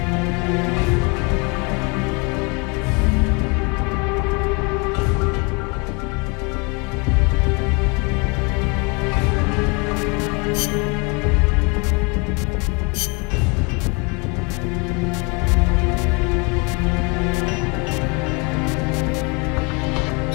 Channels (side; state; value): right; quieter; 31.1 dB